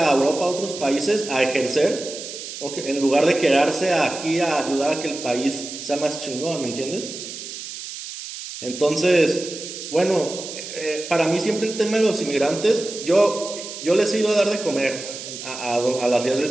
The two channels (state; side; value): noise; right; hiss, 10 dB below the sound